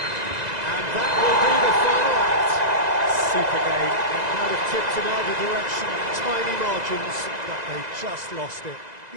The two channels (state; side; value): late; left; 2.0 ms